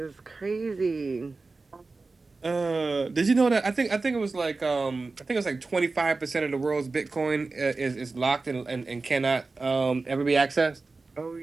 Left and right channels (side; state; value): left; quieter; 3.8 dB